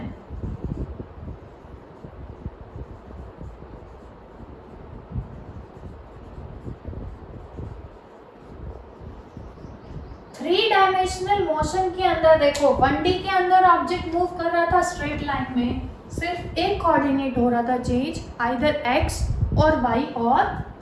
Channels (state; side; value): identical; both; correlation 1.00